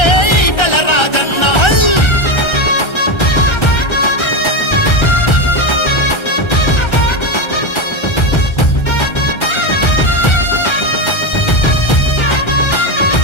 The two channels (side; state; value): right; late; 1.3 ms